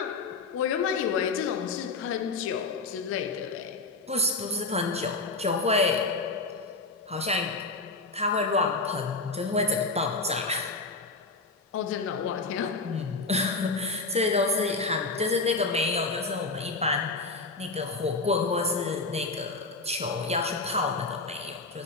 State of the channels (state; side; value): quieter; right; 3.7 dB